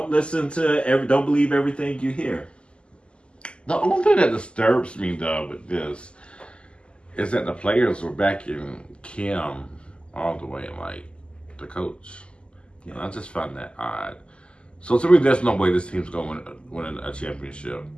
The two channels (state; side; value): late; right; 0.052 ms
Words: believe everything you hear. The only thing that disturbs me, though, with this is that the players were backing Kim all the way, like the coach. Yeah. And I just find that odd. So to me, there's no way this team's going to win a championship,